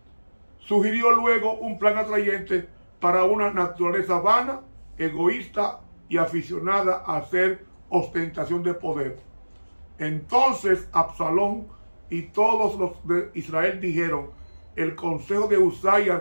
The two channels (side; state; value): both; inverted; correlation -1.00